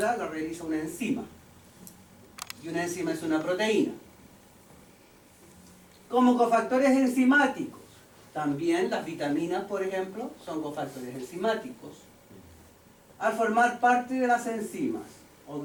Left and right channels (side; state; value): both; identical; correlation 1.00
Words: la realiza una enzima. Y una enzima es una proteína. Como cofactores enzimáticos, también las vitaminas, por ejemplo, son cofactores enzimáticos. Al formar parte de las enzimas, o